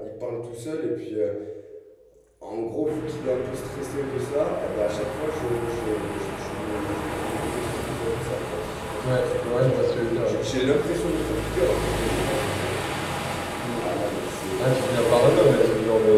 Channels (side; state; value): both; identical; correlation 1.00